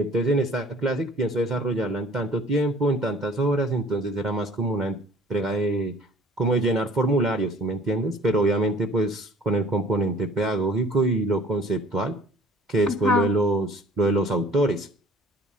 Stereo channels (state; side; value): normal; both; correlation 0.51